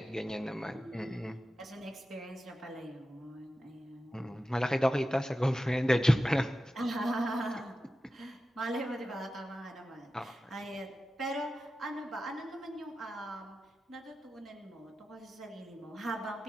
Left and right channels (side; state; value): both; normal; correlation 0.93